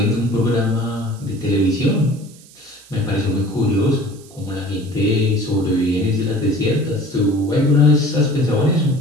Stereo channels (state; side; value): noise; right; hiss, 24 dB below the sound